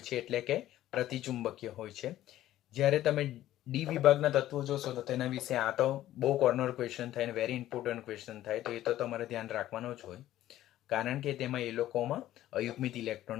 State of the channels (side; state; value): right; quieter; 13.7 dB